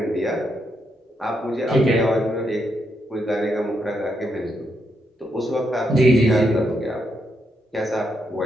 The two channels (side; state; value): both; normal; correlation 0.80